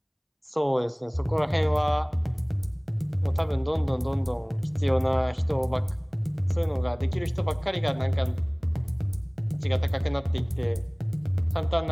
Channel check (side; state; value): both; identical; correlation 1.00